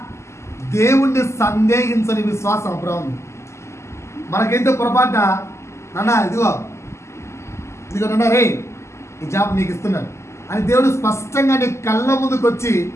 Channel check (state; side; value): late; right; 0.13 ms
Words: దేవుణ్ణి సందేహించని విశ్వాసం అబ్రాహాము. మనకైతే పొరపాటున నాన్న ఇదిగో నాన్న రే, ఈ జాబ్ నీకు ఇస్తున్నాను అని దేవుడు స్పష్టంగా నీ కళ్ళ ముందుకు వచ్చి